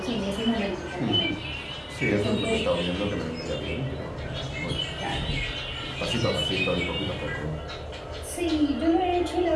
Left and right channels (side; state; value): both; identical; correlation 1.00